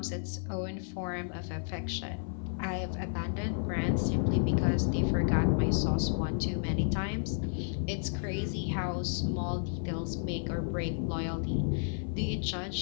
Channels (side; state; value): right; silent; 56 dB below the other